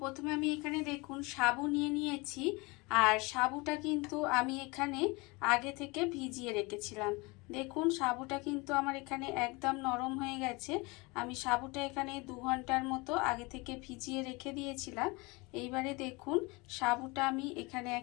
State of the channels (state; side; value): quieter; right; 25.9 dB